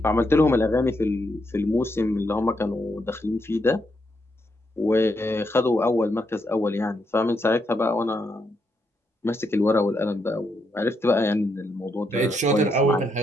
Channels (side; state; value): both; normal; correlation 0.79